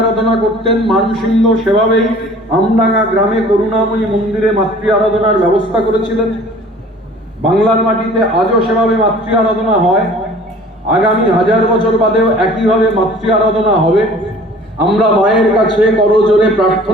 আরাধনা করতেন, মানসিংহ সেভাবেই আমডাঙ্গা গ্রামে করুণাময়ী মন্দিরে মাতৃ আরাধনার ব্যবস্থা করেছিলেন। বাংলার মাটিতে আজও সেভাবে মাতৃ আরাধনা হয়। আগামী 1000 বছর বাদেও একইভাবে মাতৃ আরাধনা হবে। আমরা মায়ের কাছে করজোড়ে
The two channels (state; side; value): normal; both; correlation 0.48